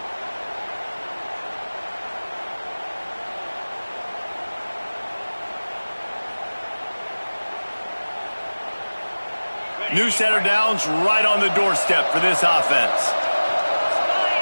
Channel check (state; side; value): inverted; both; correlation -1.00